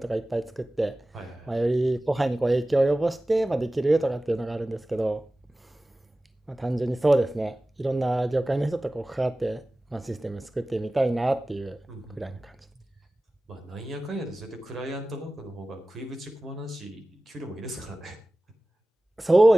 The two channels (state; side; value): normal; both; correlation 0.97